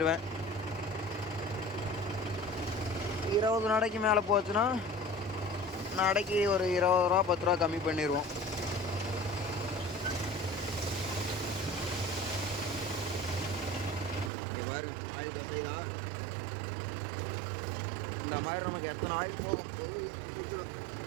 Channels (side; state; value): left; drops out; at 14.3 s